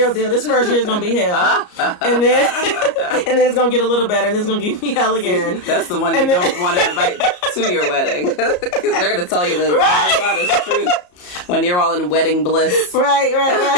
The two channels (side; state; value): right; late; 34 ms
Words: deal. This first year is gonna be hell, and then it's gonna get a little better, and then it's gonna give me hell again. That's the one you don't want to invite to your wedding. They're going to tell you the honest truth when you're all in wedding bliss.